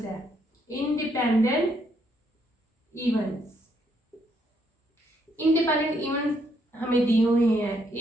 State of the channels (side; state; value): both; normal; correlation 0.73